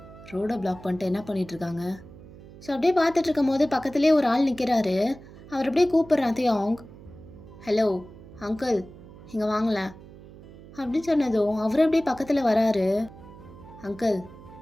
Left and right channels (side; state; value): right; noise; hum, 19 dB below the sound